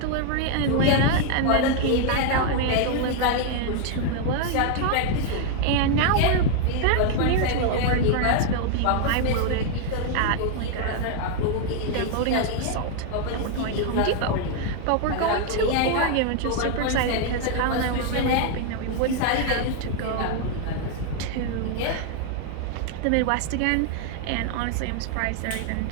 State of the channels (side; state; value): both; different; correlation 0.00